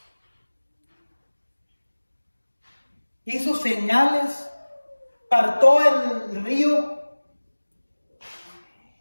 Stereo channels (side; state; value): both; inverted; correlation -1.00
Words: hizo señales, partó el río